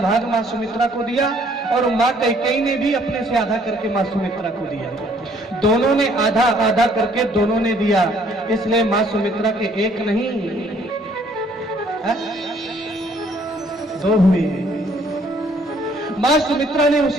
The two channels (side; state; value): both; normal; correlation 0.62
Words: मां सुमित्रा को दिया और मां कैकेयी ने भी अपने से आधा करके मां सुमित्रा को दिया। दोनों ने आधा आधा करके दोनों ने दिया, इसलिए मां सुमित्रा के एक नहीं 2 हुए। मां सुमित्रा ने